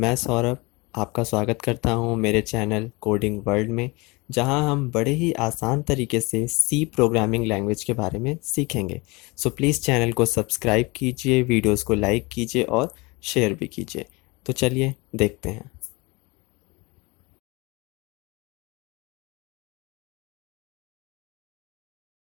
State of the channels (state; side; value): quieter; right; 25.5 dB